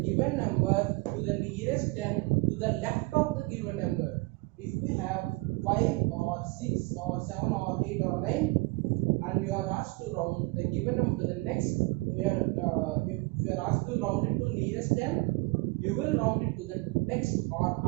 given number to the nearest 10 to the left of the given number. If we have 5 or 6 or 7 or 8 or 9, and you are asked to round the given number to the next, if you are asked to round it to nearest 10, you will round it to the next or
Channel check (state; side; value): quieter; left; 25.2 dB